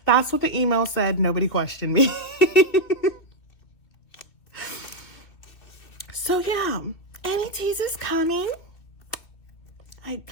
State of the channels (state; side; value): late; right; 2.6 ms